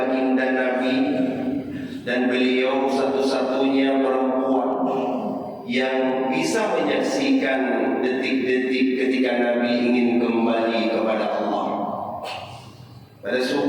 Nabi, dan beliau satu-satunya perempuan yang bisa menyaksikan detik-detik ketika Nabi ingin kembali kepada Allah. Pada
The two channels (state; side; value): identical; both; correlation 1.00